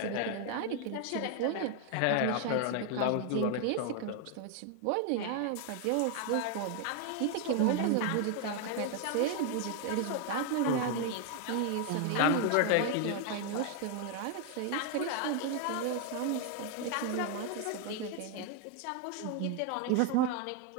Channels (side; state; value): both; different; correlation 0.00